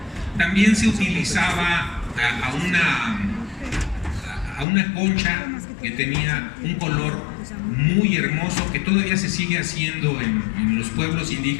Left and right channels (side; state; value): right; drops out; at 4.7 s